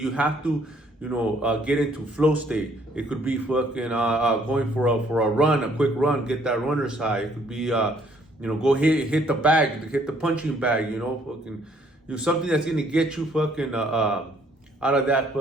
have to, get into flow state. It could be fucking going for a run, a quick run, get that runner's high. It could be, go hit the bag, hit the punching bag, fucking, something that's going to get you fucking, out of that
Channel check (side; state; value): both; normal; correlation 0.64